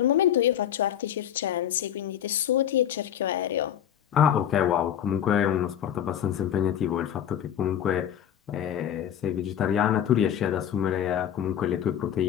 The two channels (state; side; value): quieter; right; 9.9 dB